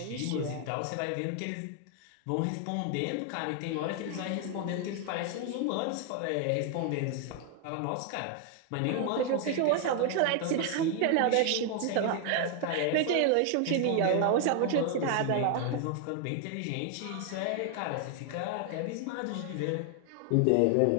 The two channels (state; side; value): different; both; correlation 0.00